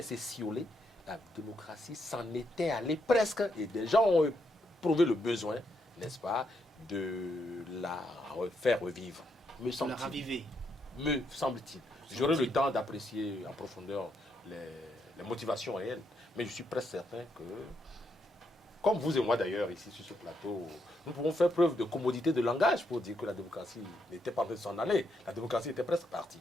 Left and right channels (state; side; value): normal; both; correlation 0.78